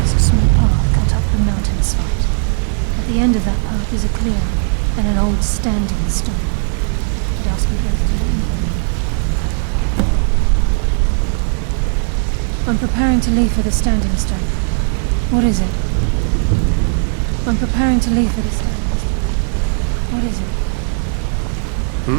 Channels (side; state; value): left; silent; digital silence